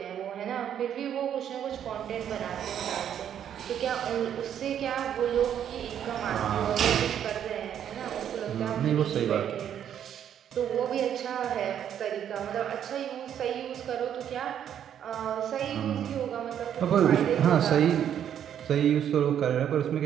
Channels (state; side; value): quieter; left; 9.5 dB